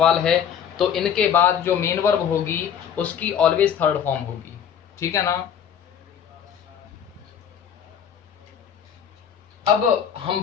है तो इनके बाद जो मेन वर्ब होगी उसकी ऑलवेज थर्ड फॉर्म होगी। ठीक है ना। अब हम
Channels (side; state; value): right; quieter; 8.4 dB